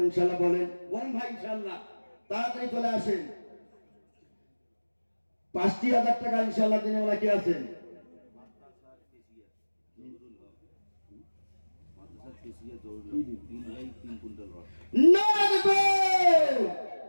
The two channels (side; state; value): both; inverted; correlation -1.00